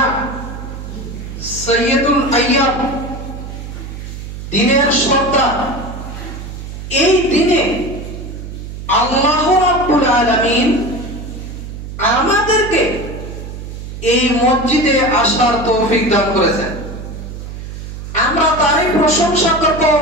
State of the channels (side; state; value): right; noise; hum, 10 dB below the sound